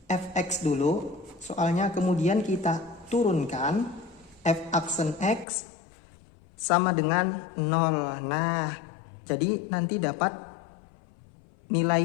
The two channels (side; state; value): right; drops out; at 5.5 s